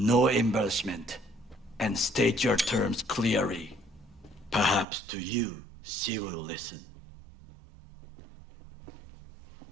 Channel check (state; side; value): drops out; left; at 4.9 s